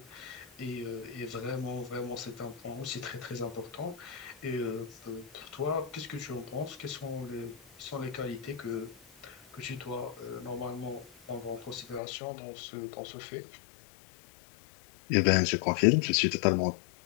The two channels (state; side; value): drops out; right; at 12.0 s